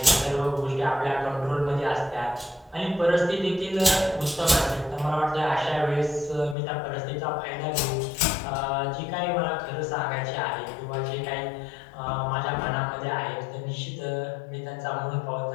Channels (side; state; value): right; drops out; at 6.6 s